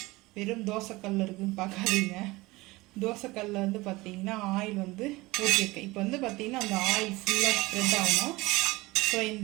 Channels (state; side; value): quieter; left; 21.2 dB